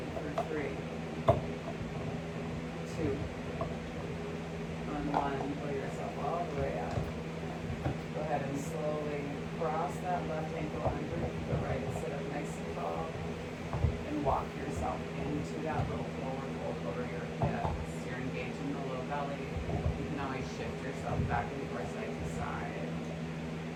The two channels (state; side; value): identical; both; correlation 1.00